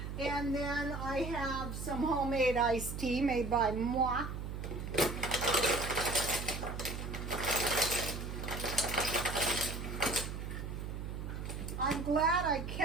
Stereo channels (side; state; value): right; noise; hum, 6 dB below the sound